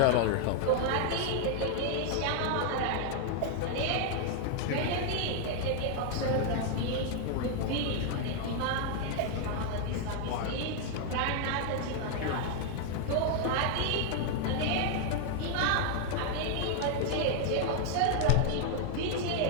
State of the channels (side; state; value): both; different; correlation 0.00